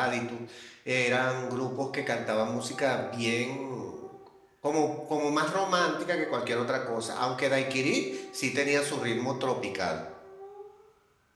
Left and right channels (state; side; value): identical; both; correlation 1.00